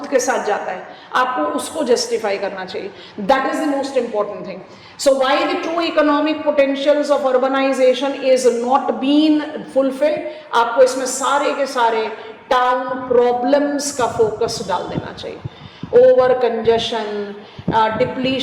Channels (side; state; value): both; identical; correlation 1.00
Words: के साथ जाता है, आपको उसको जस्टिफाई करना चाहिए. That is the most important thing. So why the true economic potentials of urbanization is not been fulfilled? आपको इसमें सारे के सारे टाउन प्रॉब्लम्स का फोकस डाल देना चाहिए. Over congestion,